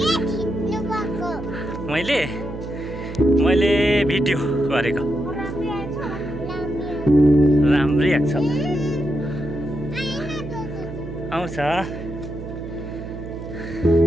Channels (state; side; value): noise; right; hum, 10 dB below the sound